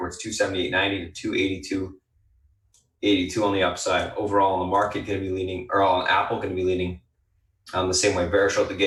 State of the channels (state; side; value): identical; both; correlation 1.00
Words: 278.90 to 282.82 on the upside. Overall on the market, going to be leaning, or on Apple, going to be leaning the same way. Bearish out the